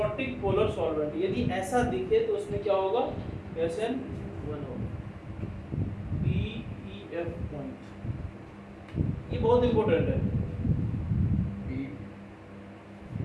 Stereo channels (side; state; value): both; identical; correlation 1.00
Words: पोलर सॉल्वेंट। यदि ऐसा दिखे तो उसमें क्या होगा, SN1 होगा, PEF पॉइंट। ये बहुत इंपॉर्टेंट है,